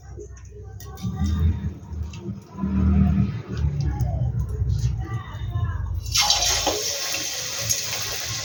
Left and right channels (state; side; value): identical; both; correlation 1.00